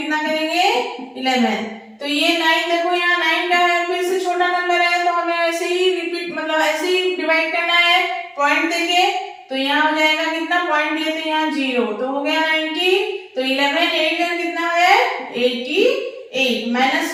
करेंगे, 11। तो ये 9 देखो, यहाँ 9 का है, फिर से छोटा नंबर है तो हमें ऐसे ही रिपीट, मतलब ऐसे ही डिवाइड करना है पॉइंट देके। तो यहाँ हो जाएगा कितना, पॉइंट दिए तो यहाँ 0, तो हो गया 90। तो 11 8 का कितना है 88। माइनस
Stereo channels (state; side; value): identical; both; correlation 1.00